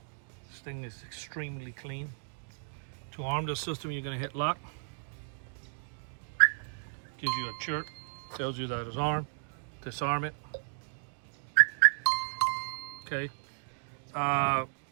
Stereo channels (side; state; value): left; silent; digital silence